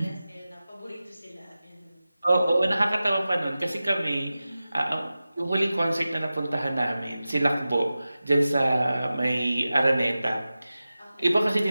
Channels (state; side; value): inverted; both; correlation -0.95